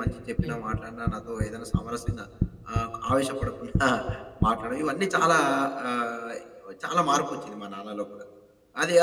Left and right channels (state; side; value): identical; both; correlation 1.00